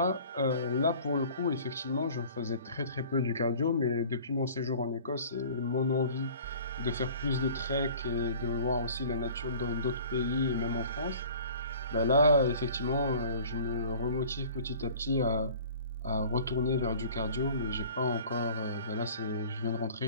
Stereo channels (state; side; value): inverted; both; correlation -0.47